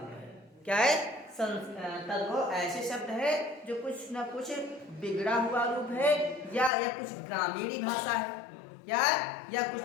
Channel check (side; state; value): right; drops out; at 6.7 s